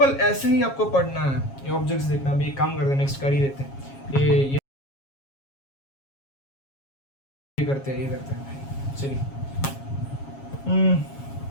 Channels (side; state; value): right; late; 7.3 ms